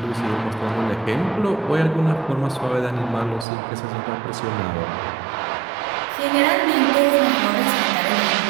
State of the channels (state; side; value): drops out; left; at 3.5 s